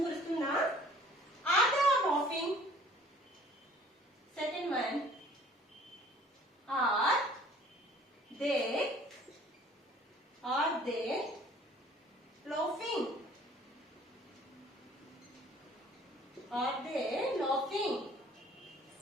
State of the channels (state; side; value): normal; both; correlation 0.53